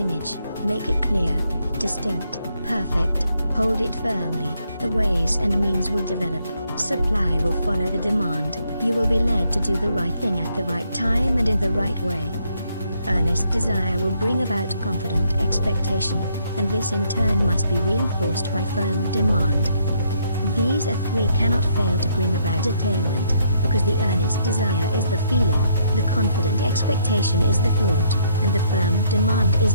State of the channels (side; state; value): both; inverted; correlation -0.71